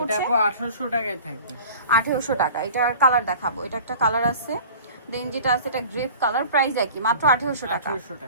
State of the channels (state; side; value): inverted; both; correlation -0.43